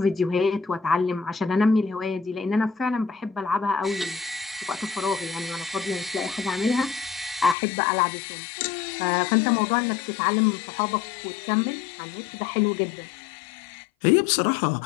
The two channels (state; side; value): drops out; right; at 7.6 s